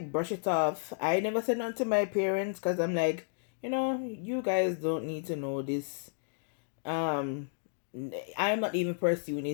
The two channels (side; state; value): right; silent; digital silence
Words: brush it off. I never said nothing to my parents because I'm like, you guys don't need to know this. I'm not even pursuing